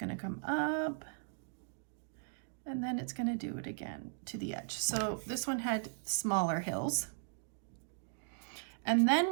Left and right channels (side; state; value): left; silent; digital silence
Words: to come up And then it's going to do it again to the edge. So this one had smaller hills. And